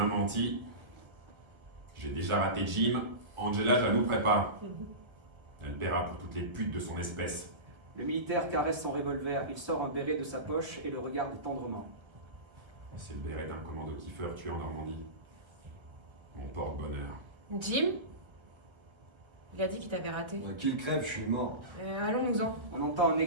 menti, j'ai déjà raté Jim, Angela, je la louperai pas. Elle paiera pour toutes les putes de son espèce. Le militaire caresse son revolver. Il sort un béret de sa poche et le regarde tendrement. C'est le béret d'un commando Kiefer tué en Normandie. Mon porte-bonheur. Jim? Il a dit qu'il t'avait raté. Qu'il crève, je suis mort. Allons-nous-en. On entend un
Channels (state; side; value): late; left; 1.1 ms